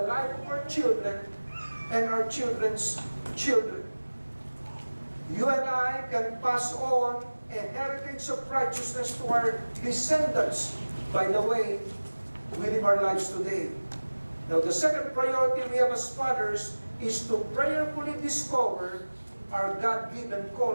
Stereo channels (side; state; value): both; inverted; correlation -1.00